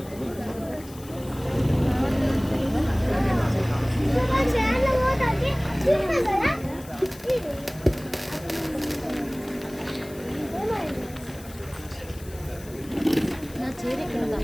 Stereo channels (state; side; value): noise; left; hiss, 20 dB below the sound